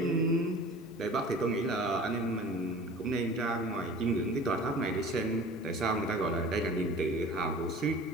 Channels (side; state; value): both; normal; correlation 0.42